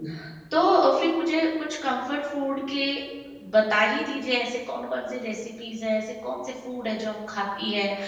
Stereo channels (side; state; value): both; identical; correlation 1.00